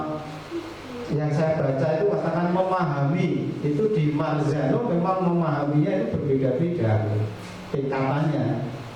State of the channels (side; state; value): both; identical; correlation 1.00